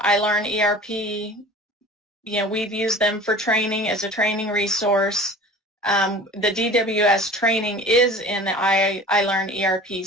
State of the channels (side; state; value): both; normal; correlation 0.42